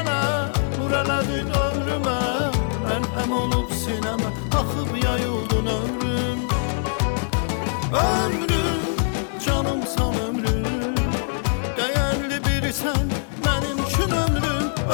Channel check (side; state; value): right; silent; digital silence